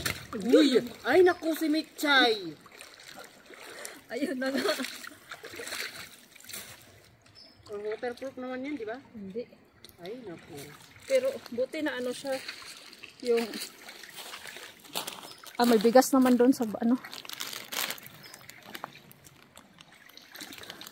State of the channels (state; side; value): identical; both; correlation 1.00